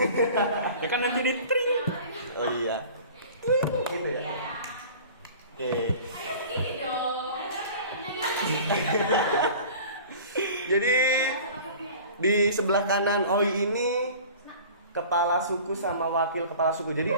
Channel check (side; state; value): both; inverted; correlation -0.42